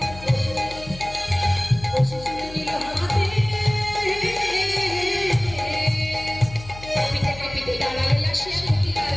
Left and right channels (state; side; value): noise; left; hum, 15 dB below the sound